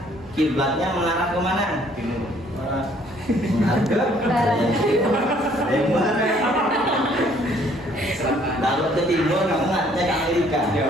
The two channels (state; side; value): normal; both; correlation 0.62